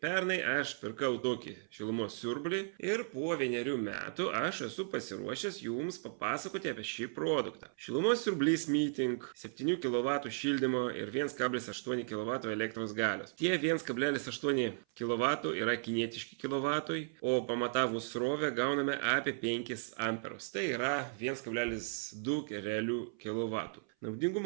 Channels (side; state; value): left; silent; 54 dB below the other